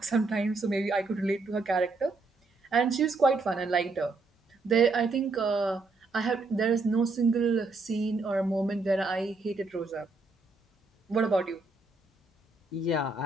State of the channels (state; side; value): quieter; left; 3.6 dB